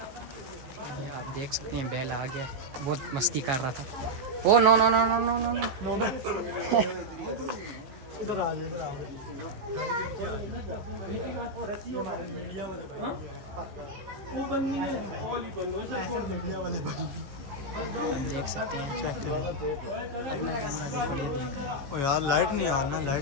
आप देख सकते हैं बैल आ गया, बहुत मस्ती कर रहा था। Oh no no no no no no no. इधर आ इधर आ। वो बननी है, ओली बनो, ऐसे छोड़ दे। वाले भाई आप देख सकते हैं चेक करें अपना कैमरा देखो। ये देख ओ यार लाइट नहीं आ रहा, लाइट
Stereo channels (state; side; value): late; left; 15 ms